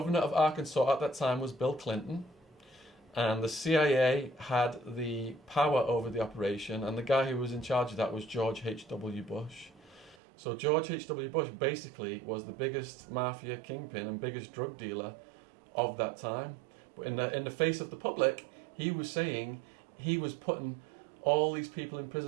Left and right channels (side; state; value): left; drops out; at 10.2 s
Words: of Arkansas at that time was Bill Clinton. And the CIA had the power over the operation, and the guy who was in charge of that was George H.W. Bush. So George H.W. Bush basically was the biggest mafia kingpin and biggest drug dealer of that time. But in the face of the public, he was saying he was putting all these people in